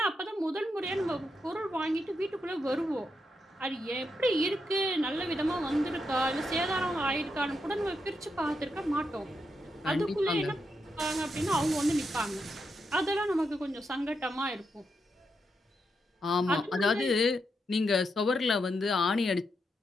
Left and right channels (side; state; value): both; normal; correlation 0.83